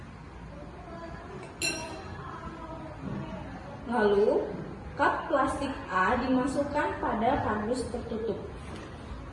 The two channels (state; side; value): identical; both; correlation 1.00